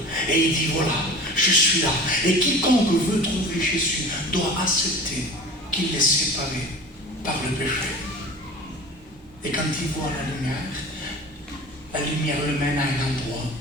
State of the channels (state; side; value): normal; both; correlation 0.37